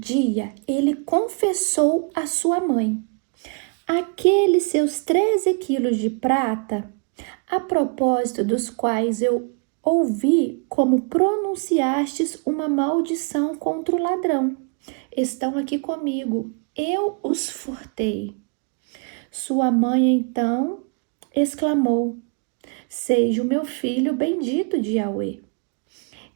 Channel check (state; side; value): quieter; left; 36.4 dB